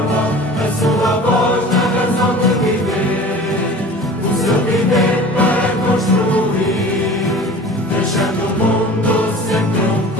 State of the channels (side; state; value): both; normal; correlation 0.40